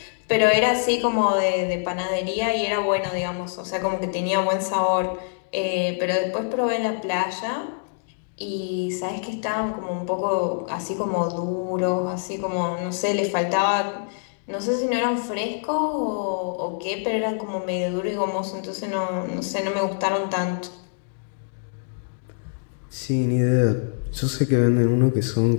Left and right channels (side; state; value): right; silent; digital silence